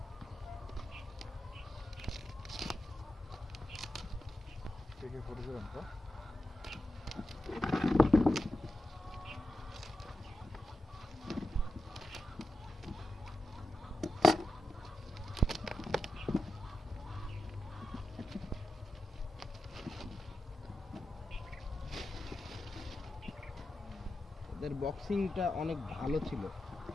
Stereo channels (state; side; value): normal; both; correlation 0.90